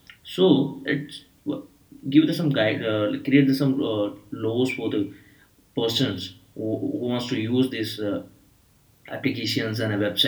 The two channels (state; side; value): identical; both; correlation 1.00